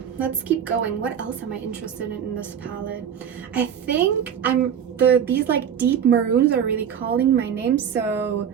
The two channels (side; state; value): left; quieter; 8.4 dB